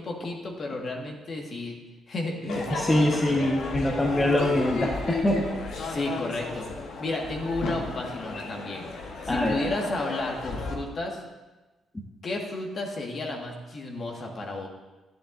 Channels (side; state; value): both; normal; correlation 0.83